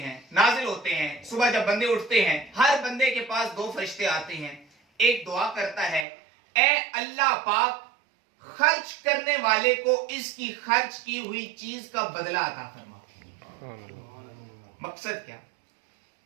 नाजिल होते हैं। सुबह जब बंदे उठते हैं, हर बंदे के पास दो फरिश्ते आते हैं। एक दुआ करता है, ए अल्लाह पाक, खर्च करने वाले को इसकी खर्च की हुई चीज का बदला अता फरमा। मकसद क्या?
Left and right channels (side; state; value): left; drops out; at 6.1 s